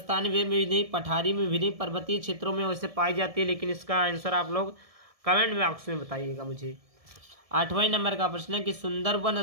में भी नहीं, पठारी में भी नहीं, पर्वतीय क्षेत्रों में वैसे पाई जाती है। लेकिन इसका आंसर आप लोग कमेंट बॉक्स में बताइएगा मुझे। 8वें नंबर का प्रश्न है कि सुंदरवन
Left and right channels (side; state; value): left; late; 1.7 ms